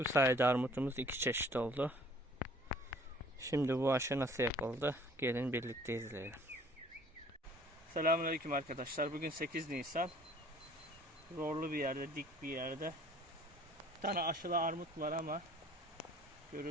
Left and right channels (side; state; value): both; normal; correlation 0.54